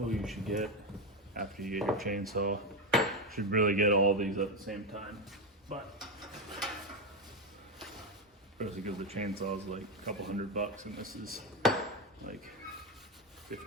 you should get after you get your chainsaw. You should really get all these at the same time, but especially because the chainsaw is like a couple $100 and this is like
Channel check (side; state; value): both; normal; correlation 0.11